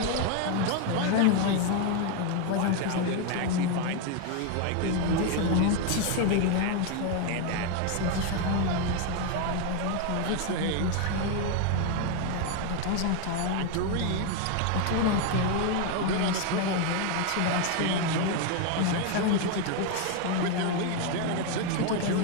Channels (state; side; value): different; both; correlation 0.01